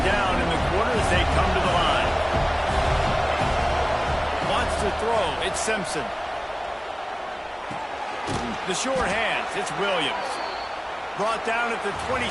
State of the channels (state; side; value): identical; both; correlation 1.00